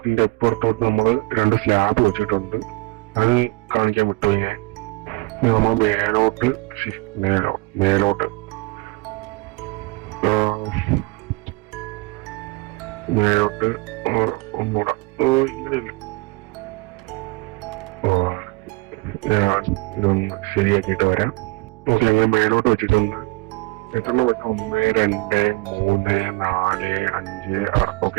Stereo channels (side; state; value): left; quieter; 23.6 dB